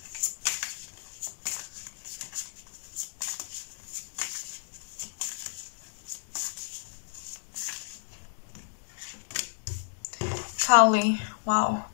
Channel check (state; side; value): silent; right; digital silence